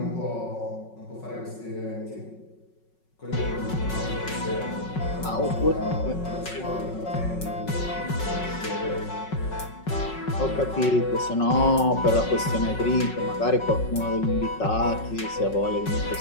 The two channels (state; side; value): late; right; 5.4 ms